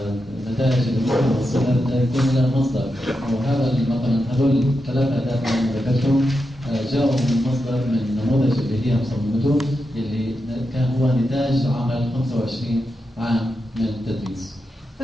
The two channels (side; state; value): both; normal; correlation 0.87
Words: النتائج اللي ممكن نوصلها يكون لها مصدر وهذا مثلا هذول ثلاث أهداف اللي ذكرتهم جاءوا من مصدر من نموذج اللي هي مصممته اللي كان هو نتاج عمل 25 عام من التدريس.